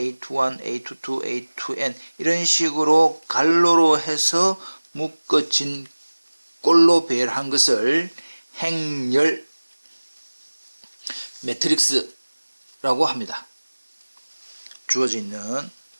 A22, A2N 이런 식으로 갈로로 해서 묶어진 꼴로 배열한 것을 행렬 매트릭스라고 합니다. 주어져 있는.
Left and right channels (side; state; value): both; inverted; correlation -1.00